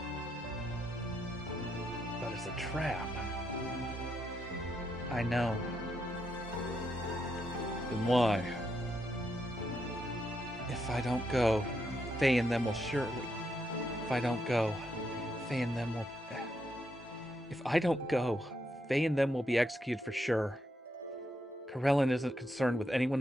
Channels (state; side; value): normal; both; correlation 0.80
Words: But it's a trap. I know. Then why? If I don't go, Faye and them will surely... If I don't go, Faye and them will... If I don't go, Faye and them will be executed for sure. Karelin isn't concerned with